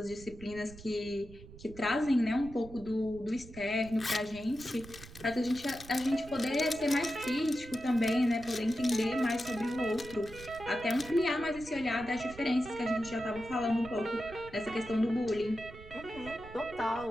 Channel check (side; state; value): right; noise; rumble, 17 dB below the sound